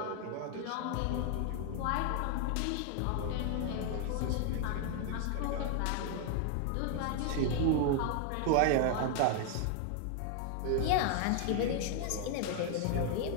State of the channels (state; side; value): different; both; correlation 0.00